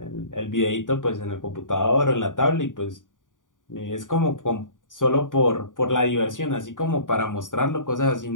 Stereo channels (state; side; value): late; right; 0.88 ms